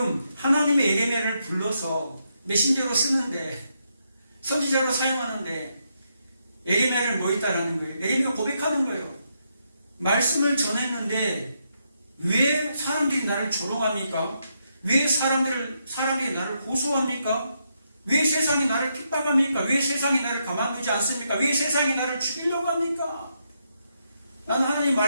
하나님의 예레미야를 불러서 메신저로 쓰는데, 선지자로 사용하는데 예레미야를 뭐 했다라는 거예요? 예레미야가 고백하는 거예요. 말씀을 전했는데 왜 사람들이 나를 조롱합니까? 왜 사람들이 나를 고소합니까? 왜 세상이 나를 핍박합니까? 왜 세상이 나를 가만두지 않습니까? 왜 세상이 나를 죽이려고 합니까? 나는 하나님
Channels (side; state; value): both; inverted; correlation -0.80